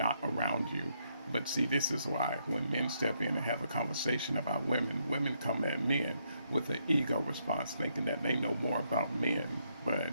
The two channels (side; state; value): both; inverted; correlation -0.76